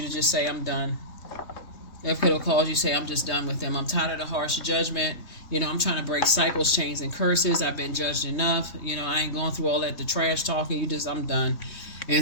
to just say, I'm done. It could have caused you to say, I'm just done with them. I'm tired of the harsh judgment. I'm trying to break cycles, chains, and curses. I've been judged enough. I ain't going through all that, the trash talking. I'm done. And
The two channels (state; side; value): late; right; 3.2 ms